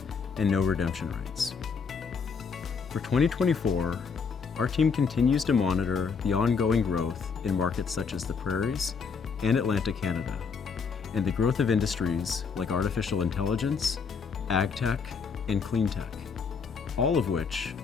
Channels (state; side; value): quieter; right; 5.7 dB